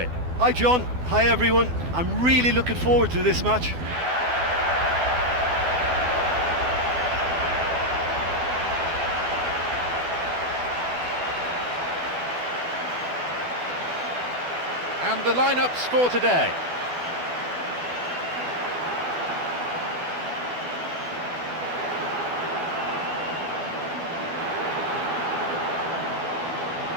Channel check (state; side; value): late; left; 12 ms